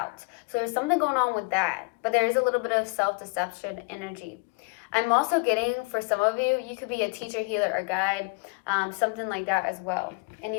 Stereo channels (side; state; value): right; quieter; 30.6 dB